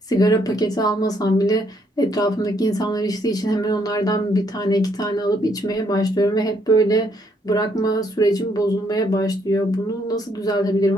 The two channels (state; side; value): normal; both; correlation 0.71